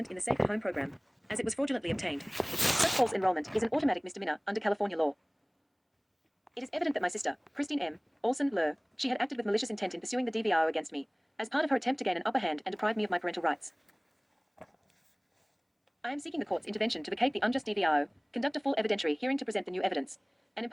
in the Safe at Home program, as it was fraudulently obtained. Such false enrollment is an automatic misdemeanor under California law. It is evident that my sister, Christine M. Olson Lur, she had acted with malicious intent in pursuing the DVRO against me, as part of her attempt to gain an upper hand and deprive me of my parental rights. I am seeking the court's intervention to vacate the unjust DVRO, conduct a full evidentiary hearing to present the new evidence, and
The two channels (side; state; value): both; identical; correlation 1.00